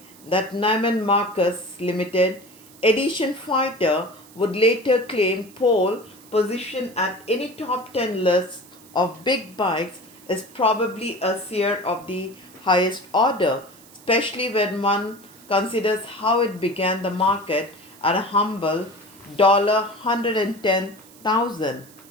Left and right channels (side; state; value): right; noise; hiss, 23 dB below the sound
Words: that Neiman Marcus limited edition fighter would later claim pole position at any top 10 list of big bikes is probably a seer of the highest order, especially when one considers how it began the market at a humble $110,000.